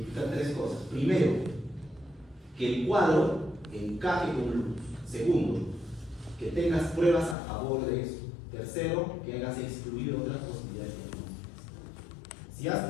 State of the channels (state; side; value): drops out; right; at 7.4 s